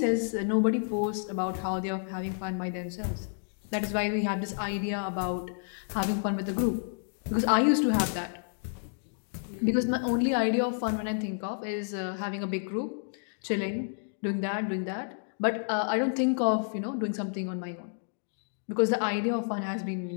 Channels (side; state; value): right; silent; digital silence